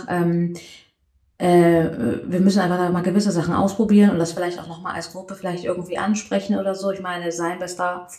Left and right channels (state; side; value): identical; both; correlation 1.00